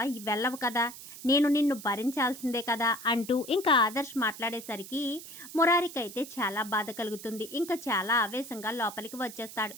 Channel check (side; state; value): right; noise; hiss, 14 dB below the sound